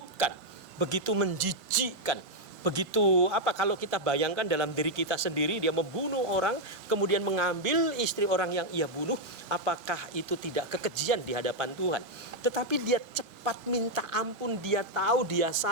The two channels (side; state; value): both; normal; correlation -0.01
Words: begitu menjijikkan. Begitu kalau kita bayangkan dalam diri kita sendiri, dia membunuh orang, kemudian mengambil istri orang yang ia bunuh, apakah itu tidak kekejian di hadapan Tuhan? Tetapi dia cepat minta ampun, dia tahu dia